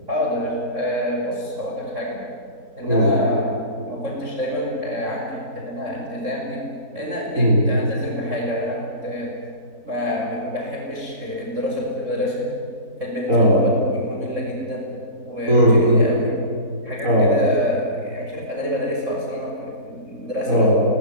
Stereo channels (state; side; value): late; left; 3.7 ms